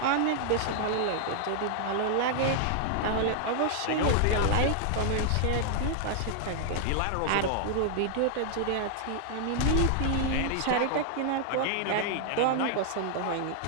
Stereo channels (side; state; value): both; different; correlation -0.01